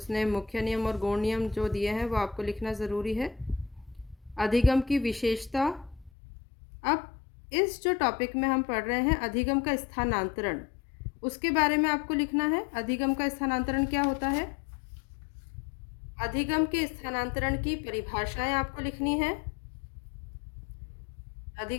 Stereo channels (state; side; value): drops out; right; at 6.1 s